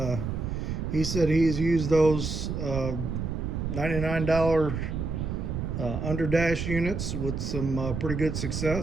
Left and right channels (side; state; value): right; noise; rumble, 3 dB below the sound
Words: he said he's used those $99 underdash units with some pretty good